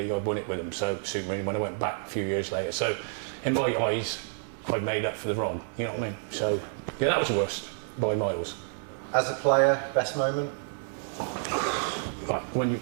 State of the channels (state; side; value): silent; left; 58 dB below the other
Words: I won it with them, so it suited me when I went back a few years later. So in my eyes, I made up for the wrong, you know what I mean? So yeah, that was the worst by miles. As a player, best moment? Right, when you,